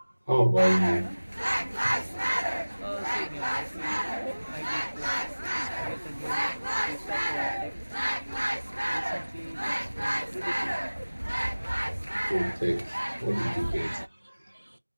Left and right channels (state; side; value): inverted; both; correlation -1.00